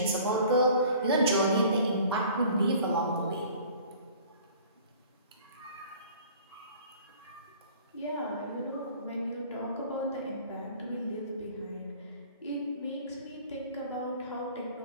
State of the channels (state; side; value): inverted; both; correlation -0.49